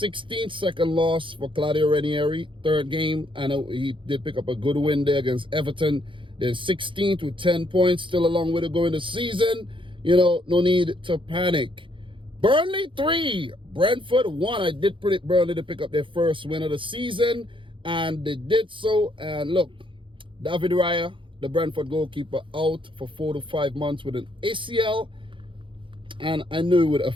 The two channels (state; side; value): late; left; 0.25 ms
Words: second loss for Claudio Ranieri, third game. I know he did pick up a good win there against Everton. They're 16th with 10 points, still a long way to go in the season. You know, no need to panic. Burnley 3, Brentford 1. I did predict Burnley to pick up their first win of the season, and they did so. And look, David Raya, the Brentford goalkeeper, out for 4 to 5 months with an ACL, and I knew it would